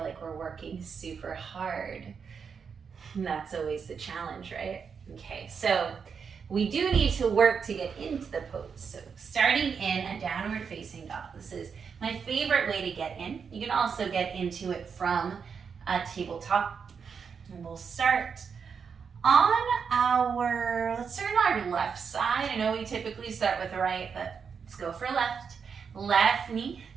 like we're working super hard. And that's always the challenge, right? Okay, so we do need to work to get into the pose. So starting in a downward facing dog. This is my favorite way to get in. You can also get into it from a tabletop. And we'll start on let's start on our left side. I know we typically start with the right, but let's go for left. Left knee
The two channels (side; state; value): left; quieter; 6.2 dB